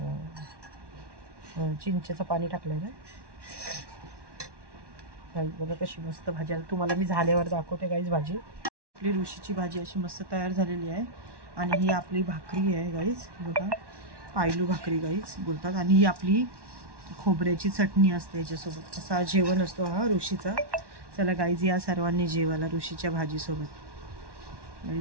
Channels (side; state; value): left; late; 1.1 ms